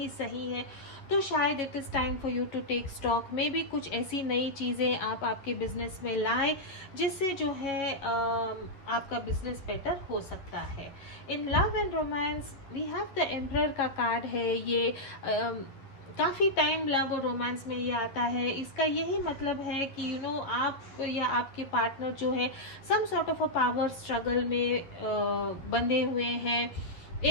सही है, तो शायद it is time for you to take stock. Maybe कुछ ऐसी नई चीज़ें आप आपके बिजनेस में लाएं जिससे जो है आपका बिजनेस बेटर हो सकता है। In love and romance we have the emperor का कार्ड है। ये काफ़ी टाइम लव और रोमांस में ये आता है। इसका यही मतलब है कि आप या आपके पार्टनर जो है some sort of a power struggle में बंधे हुए हैं।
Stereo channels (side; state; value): right; late; 11 ms